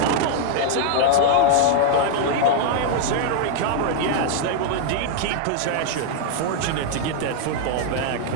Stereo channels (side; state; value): both; different; correlation -0.01